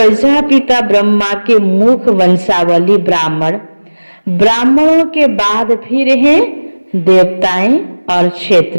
ब्रह्मा के मुख वंशावली ब्राह्मण। ब्राह्मणों के बाद फिर हैं देवताएं और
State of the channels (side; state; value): both; inverted; correlation -1.00